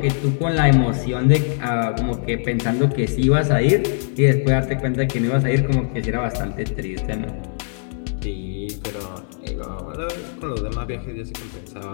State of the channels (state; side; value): silent; right; digital silence